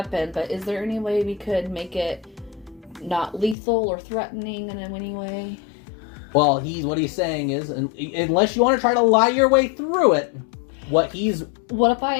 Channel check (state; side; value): drops out; right; at 3.6 s